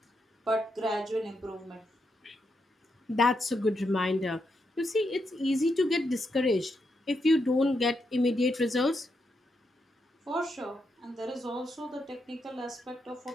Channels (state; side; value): normal; both; correlation 0.82